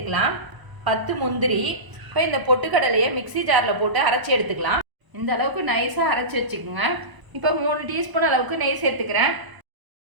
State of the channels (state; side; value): late; left; 1.0 ms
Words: 10 முந்திரி. இப்போ இந்த பொட்டுக்கடலையை மிக்சி ஜாரில் போட்டு அரைச்சி எடுத்துக்கலாம். இந்த அளவுக்கு நைஸாக அரைச்சி வச்சுக்கோங்க. இப்போ 3 டீஸ்பூன் அளவுக்கு நெய் சேர்த்துக்கிறேன்.